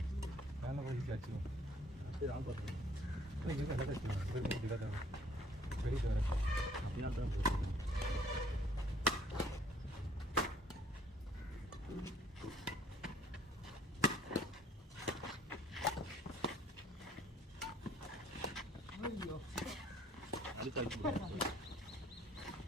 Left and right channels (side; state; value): both; normal; correlation 0.59